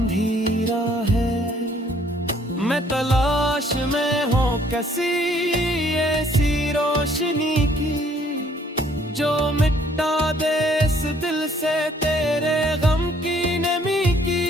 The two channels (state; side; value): normal; both; correlation 0.62